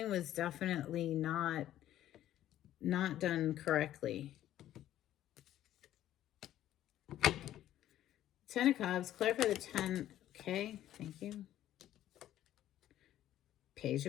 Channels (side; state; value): right; quieter; 12.6 dB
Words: was definitely not done correctly. Ten of Cups, clarify the 10. Okay, thank you. Page